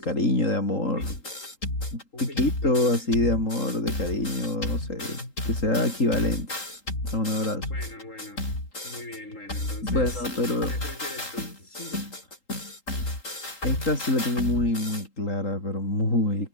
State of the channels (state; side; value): late; right; 3.8 ms